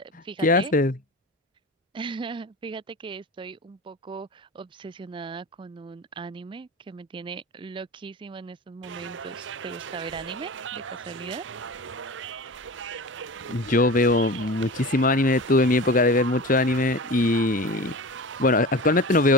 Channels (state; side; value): normal; both; correlation 0.32